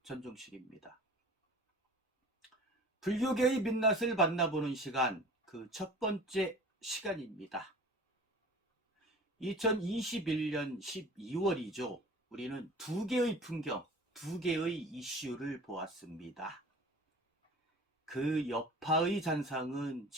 전종식입니다. 불교계의 민낯을 만나보는 시간, 그 첫 번째 시간입니다. 2021년 12월이죠. 우리는 두 개의 풍경, 두 개의 이슈를 보았습니다. 그 여파의 잔상은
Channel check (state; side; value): normal; both; correlation 0.42